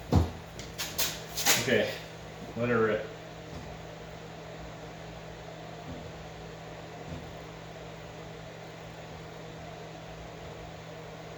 Okay, let her rip.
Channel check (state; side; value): identical; both; correlation 1.00